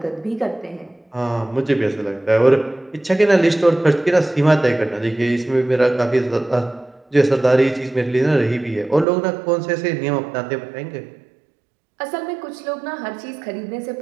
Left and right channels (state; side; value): drops out; left; at 9.1 s